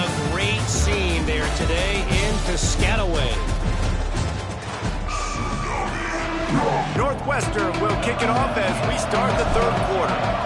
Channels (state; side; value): identical; both; correlation 1.00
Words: great scene there today in Piscataway. Northwestern will kick it off as we start the third quarter.